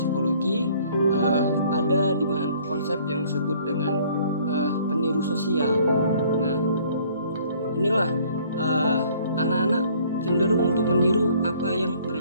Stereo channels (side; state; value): both; inverted; correlation -0.58